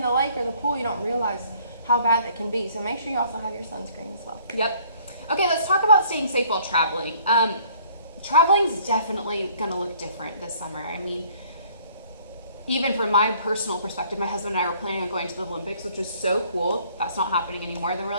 the lake or the pool, you don't realize how bad that can be. So make sure you also have your sunscreen as well. Yep. Okay, let's talk about staying safe while traveling. Traveling's definitely going to look different this summer. I mean, even from my personal perspective, my husband and I were planning on going to the Olympics, which was so cool. That's not happening anymore. Then we're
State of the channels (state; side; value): inverted; both; correlation -0.58